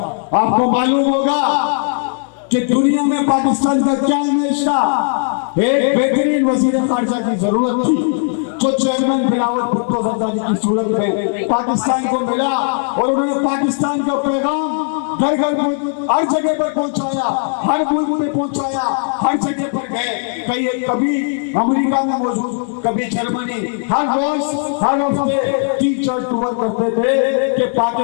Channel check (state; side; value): silent; right; 62 dB below the other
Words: आपको मालूम होगा कि दुनिया में पाकिस्तान का क्या इमेज था। एक बेहतरीन वजीर खारजा की जरूरत थी, जो चेयरमैन बिलावल भुट्टो जरदारी की सूरत में पाकिस्तान को मिला, और उन्होंने पाकिस्तान का पैगाम घर घर हर जगह पर पहुंचाया, हर मुल्क में पहुंचाया, हर जगह पर गए। कभी अमेरिका में मौजूद, कभी जर्मनी, हर रोज हर हफ्ते 3-4 टूर करते थे कि